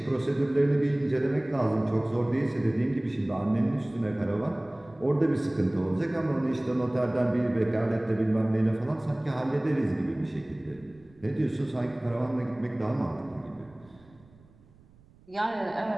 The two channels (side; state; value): right; noise; rumble, 27 dB below the sound